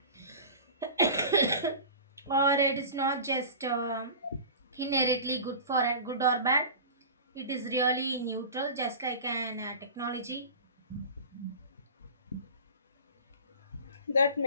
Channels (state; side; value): inverted; both; correlation -0.35